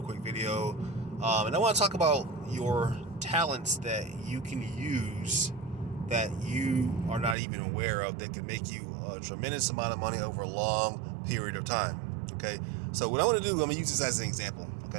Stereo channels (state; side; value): drops out; left; at 7.4 s